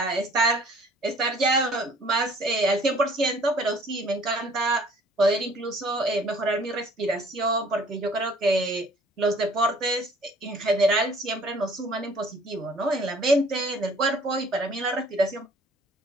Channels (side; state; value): both; normal; correlation 0.55